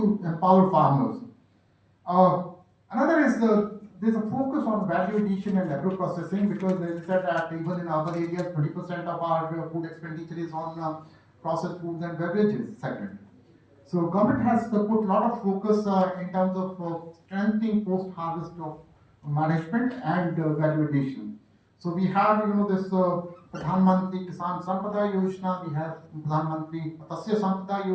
empower farmers. Uh, Another is there's a focus on value addition and agro processing, because as I said that even in urban areas, 20% of our food expenditure is on processed foods and beverages segment. So government has put a lot of focus in terms of strengthening post-harvest of management and value addition. So we have this Pradhan Mantri Kisan Sampada Yojana, we have Pradhan Mantri Matsya Sampada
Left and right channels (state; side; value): identical; both; correlation 1.00